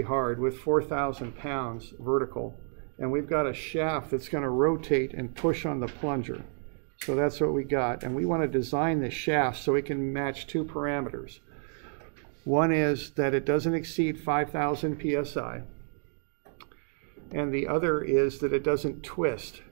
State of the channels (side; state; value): left; silent; 58 dB below the other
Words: hard with 4,000 pounds vertical. And we've got a shaft that's going to rotate and push on the plunger. So that's what we got. And we want to design the shaft so it can match two parameters. One is that it doesn't exceed 5,000 psi. And the other is that it doesn't twist.